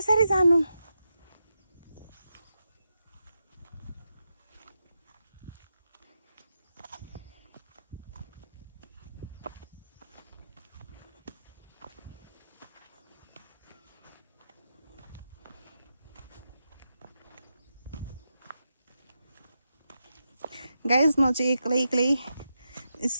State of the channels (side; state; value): both; inverted; correlation -0.87